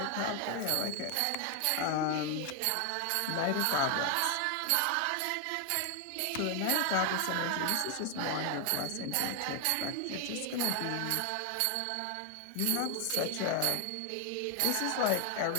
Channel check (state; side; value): different; both; correlation 0.00